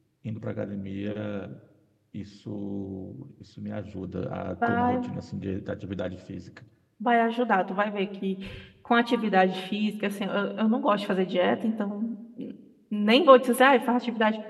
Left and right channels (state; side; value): identical; both; correlation 1.00